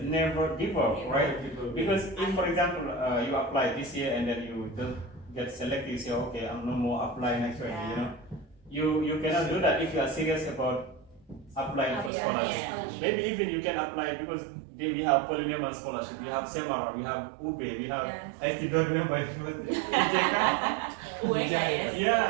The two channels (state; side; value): drops out; left; at 12.1 s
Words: never give up, right? Because if, for example, you apply this year and then you don't get selected, you say, okay, I'm no more applying next year. You know, you cannot do that if you are serious about applying for scholarship. Maybe even you can apply because we have Polinema scholarship, we have Semarang, we have Ube, we have, I still don't remember it was